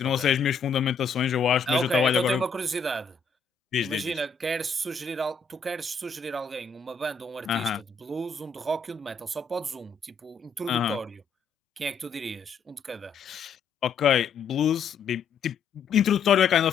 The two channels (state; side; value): quieter; right; 5.2 dB